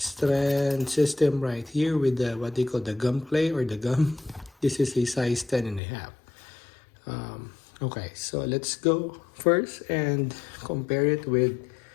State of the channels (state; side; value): drops out; right; at 5.8 s